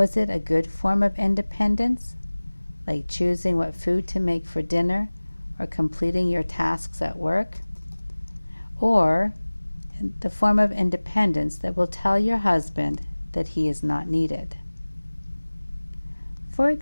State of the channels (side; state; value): both; inverted; correlation -1.00